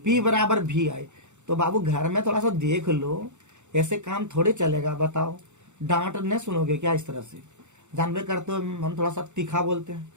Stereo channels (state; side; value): late; left; 0.84 ms